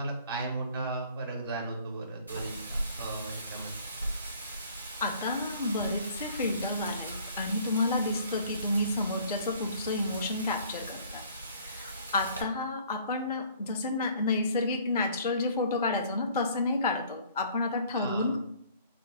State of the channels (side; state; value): both; inverted; correlation -0.55